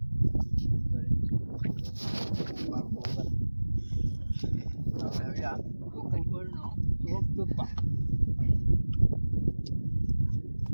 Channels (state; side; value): inverted; both; correlation -1.00